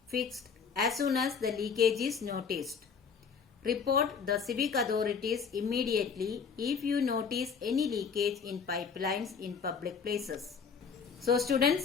fixed as soon as the leakage is noticed. Report the civic authorities immediately if you notice any leakage in pipelines in public places. So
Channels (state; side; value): quieter; right; 6.0 dB